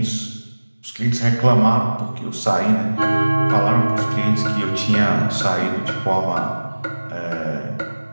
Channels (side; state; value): both; inverted; correlation -1.00